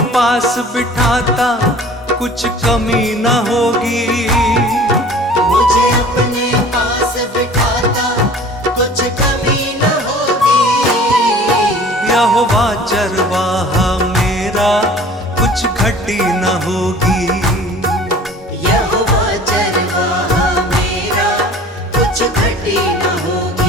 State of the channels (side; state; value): both; normal; correlation 0.46